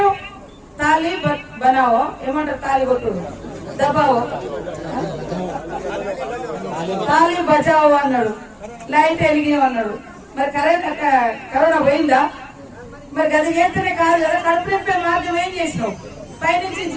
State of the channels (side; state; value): both; identical; correlation 1.00